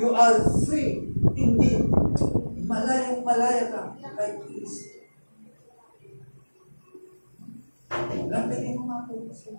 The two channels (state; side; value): inverted; both; correlation -1.00